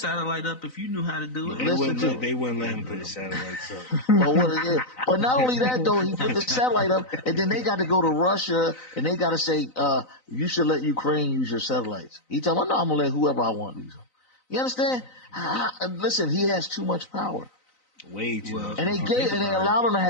up if you knew how to do it. They wouldn't let him put his satellites up. But not only that, though, he put the satellite up, and then they got to go to Russia, and they got to say, you should let Ukraine use your satellites. He told me, no, I'm going to let whoever I want use them. You understand? Listen, he has too much power. Way too much. And they allowed him to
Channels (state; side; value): late; right; 3.9 ms